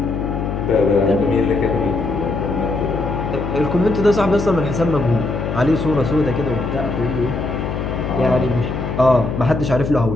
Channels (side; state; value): left; noise; hum, 4 dB below the sound